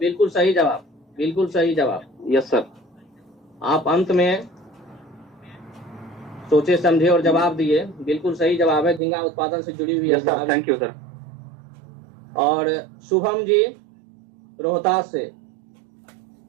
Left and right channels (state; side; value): drops out; left; at 9.0 s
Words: सही जवाब, बिल्कुल सही जवाब। Yes sir. आप अंत में सोचे समझे और जवाब दिए, बिल्कुल सही जवाब है, झींगा उत्पादन से जुड़ी हुई है यस सर, जवाब। Thank you sir. और शुभम जी रोहतास से,